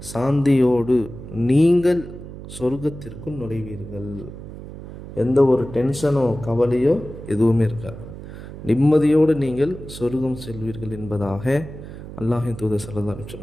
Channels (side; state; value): right; noise; hum, 13 dB below the sound